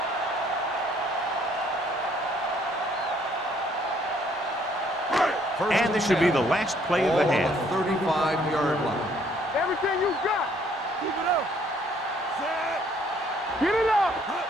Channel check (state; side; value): normal; both; correlation 0.64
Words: And this should be the last play of the half. 35-yard line. Everything you got. Keep it up. Get it up.